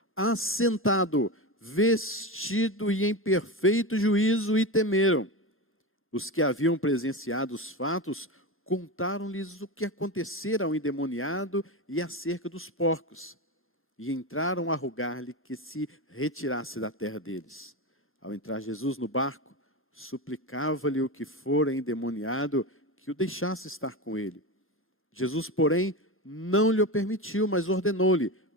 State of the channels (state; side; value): normal; both; correlation 0.20